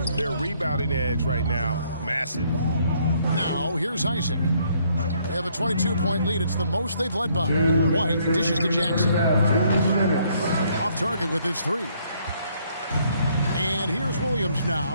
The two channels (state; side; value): inverted; both; correlation -0.67